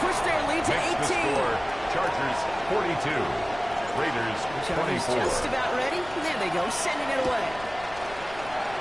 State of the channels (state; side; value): noise; left; rumble, 18 dB below the sound